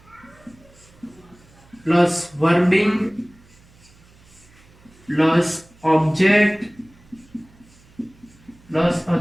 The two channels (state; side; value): noise; right; hum, 28 dB below the sound